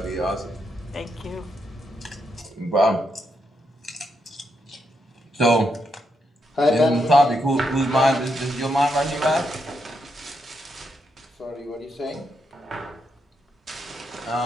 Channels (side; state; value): both; normal; correlation 0.81